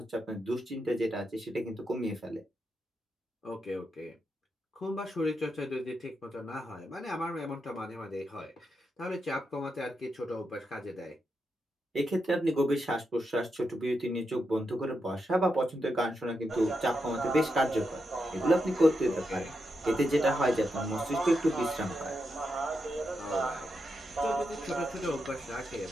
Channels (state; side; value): normal; both; correlation 0.85